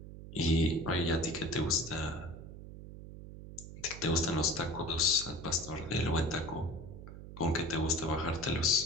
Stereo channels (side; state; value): right; noise; hum, 13 dB below the sound